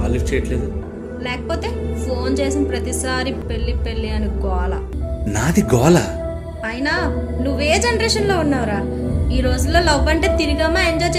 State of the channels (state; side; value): identical; both; correlation 1.00